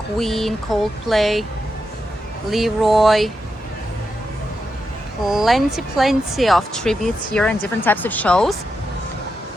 Coldplay, Leroy. Plenty of tributes here and different types of shows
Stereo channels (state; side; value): normal; both; correlation 0.86